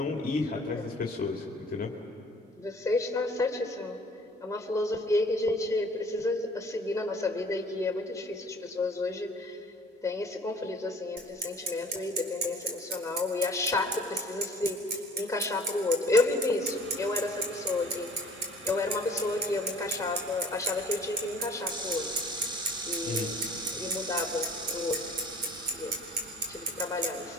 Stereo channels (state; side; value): normal; both; correlation 0.50